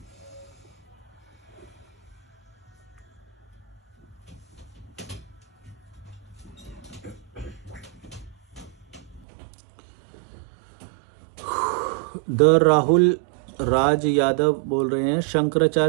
द राहुल राज यादव बोल रहे हैं,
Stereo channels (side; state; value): left; drops out; at 9.2 s